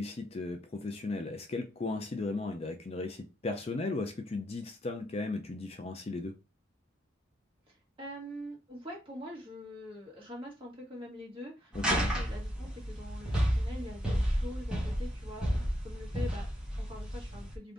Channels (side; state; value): both; normal; correlation 0.78